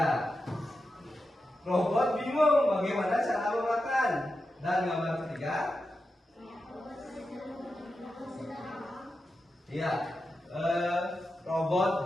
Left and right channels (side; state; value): both; normal; correlation 0.90